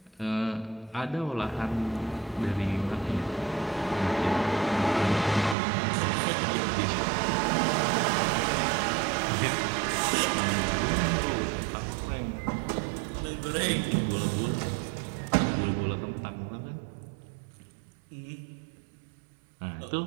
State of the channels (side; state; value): left; drops out; at 5.6 s